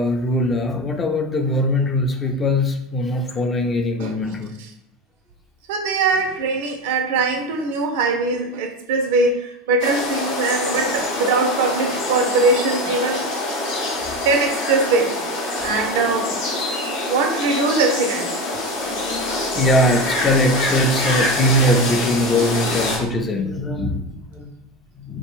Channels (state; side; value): normal; both; correlation 0.22